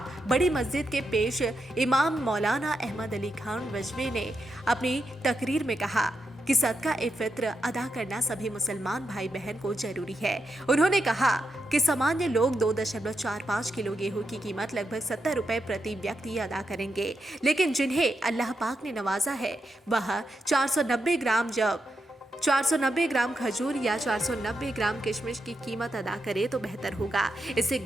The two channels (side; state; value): both; normal; correlation 0.85